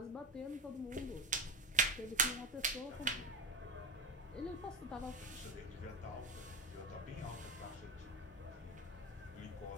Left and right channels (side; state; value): both; normal; correlation 0.19